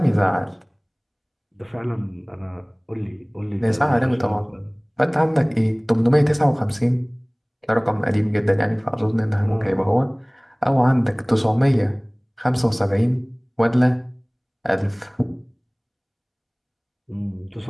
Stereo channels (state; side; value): identical; both; correlation 1.00